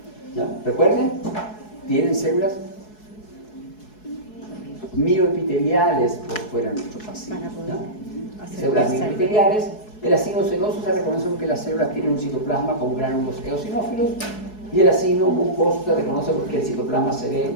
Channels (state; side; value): late; right; 4.7 ms